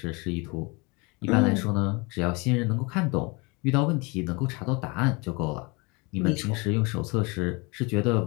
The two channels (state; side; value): quieter; right; 28.1 dB